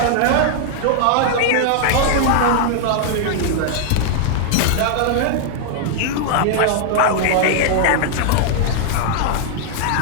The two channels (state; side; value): different; both; correlation -0.01